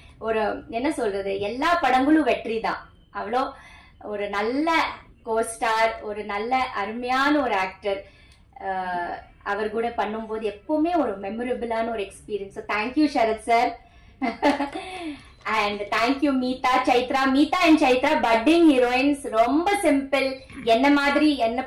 ஒரு என்ன சொல்றது, எல்லா படங்களும் வெற்றி தான். அவ்வளோ ஒரு நல்ல கோஸ்டார், ஒரு நல்ல அருமையான ஒரு ஆக்டர். அவர் கூட பண்ணும்போது எப்பவுமே ஒரு மெமரபிளான ஒரு experience. Thank you Sharath sir. And thank you Meetha, Chaitra. Meetha and Chaitra budding heroines. ரொம்ப சிம்பிள், என்ன மாதிரி, என்ன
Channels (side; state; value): both; identical; correlation 1.00